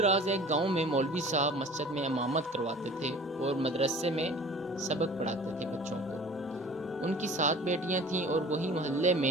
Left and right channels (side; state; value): both; normal; correlation 0.44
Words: ایک گاؤں میں مولوی صاحب مسجد میں امامت کرواتے تھے اور مدرسے میں سبق پڑھاتے تھے بچوں کو۔ ان کی 7 بیٹیاں تھیں اور وہی محلے